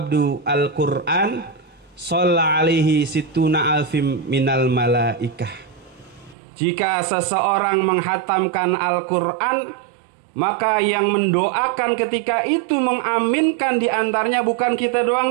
al-Qur'an shalla alaihi situna alfim minal malaikah. Jika seseorang menghatamkan Al-Qur'an, maka yang mendoakan ketika itu mengaminkan di antaranya bukan kita doang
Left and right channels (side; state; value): left; drops out; at 6.4 s